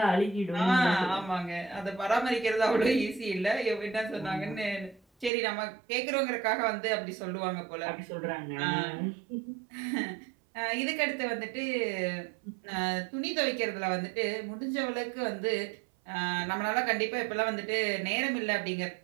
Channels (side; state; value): left; drops out; at 5.3 s